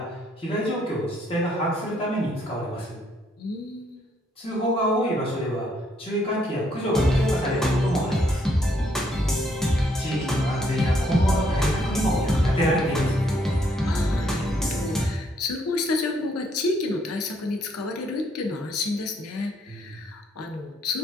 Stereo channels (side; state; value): both; normal; correlation 0.70